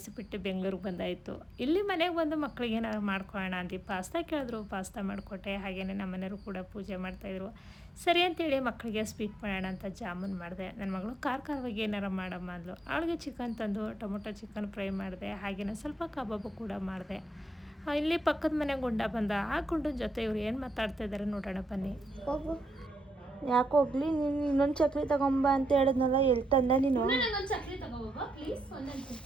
ಬಿಟ್ಟು ಬೆಂಗಳೂರಿಗೆ ಬಂದಾಯಿತು. ಇಲ್ಲಿ ಮನೆಗೆ ಬಂದು ಮಕ್ಕಳಿಗೆ ಏನಾದ್ರು ಮಾಡ್ಕೊಳ್ಳೋಣ ಅಂತ ಪಾಸ್ತಾ ಕೇಳಿದ್ರು, ಪಾಸ್ತಾ ಮಾಡಿಕೊಟ್ಟೆ. ಹಾಗೆಯೇ ನಮ್ಮ ಮನೆಯವರು ಕೂಡ ಪೂಜೆ ಮಾಡ್ತಾಯಿದ್ರು. ಸರಿ ಅಂತೇಳಿ ಮಕ್ಕಳಿಗೆ ಸ್ವೀಟ್ ಮಾಡೋಣ ಅಂತ ಜಾಮೂನ್ ಮಾಡಿದೆ. ನನ್ನ ಮಗಳು ಖಾರವಾಗಿ ಏನಾರು ಮಾಡಮ್ಮ ಅಂದ್ಲು. ಅವಳಿಗೆ ಚಿಕನ್ ತಂದು ಟೊಮೊಟೊ ಚಿಕನ್ ಫ್ರೈ ಮಾಡಿದೆ. ಹಾಗೆಯೇ ಸ್ವಲ್ಪ ಕಬಾಬು ಕೂಡ ಮಾಡಿದೆ. ಇಲ್ಲಿ ಪಕ್ಕದ ಮನೆ ಗುಂಡ ಬಂದ. ಆ ಗುಂಡನ ಜೊತೆ ಇವ್ರು ಏನು ಮಾತಾಡ್ತಾ ಇದ್ದಾರೆ ನೋಡೋಣ ಬನ್ನಿ. ಹೋಗು. ಯಾಕೆ ಹೋಗ್ಲಿ, ನೀನು ಇನ್ನೊಂದು ಚಕ್ಲಿ ತಗೊಂಬ ಅಂತ ಹೇಳಿದ್ನಲ್ಲ, ಎಲ್ಲಿ ತಂದೆ ನೀನು? ಒಂದು ಚಕ್ಲಿ ತಗೋಬ ಪ್ಲೀಸ್. ಒಂದೊಂದು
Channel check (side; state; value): both; normal; correlation 0.83